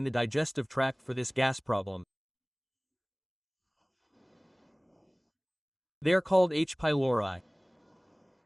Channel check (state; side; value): identical; both; correlation 1.00